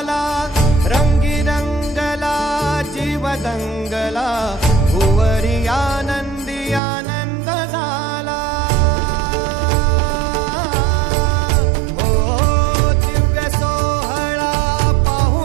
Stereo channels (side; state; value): left; drops out; at 6.8 s